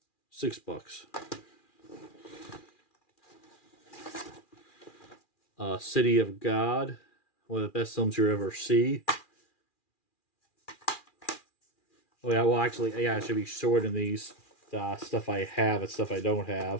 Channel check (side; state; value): right; late; 2.4 ms